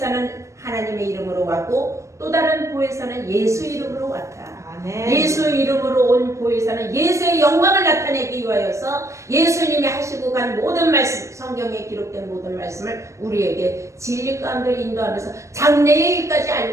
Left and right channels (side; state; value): left; late; 0.15 ms